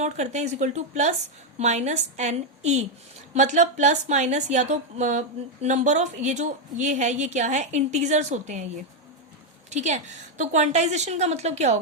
करते हैं, is equal to plus minus N E. मतलब प्लस माइनस या तो नंबर ऑफ, ये जो ये है ये क्या है, इंटीजर्स होते हैं ये। ठीक है, तो क्वांटाइजेशन का मतलब क्या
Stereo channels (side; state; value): both; normal; correlation 0.02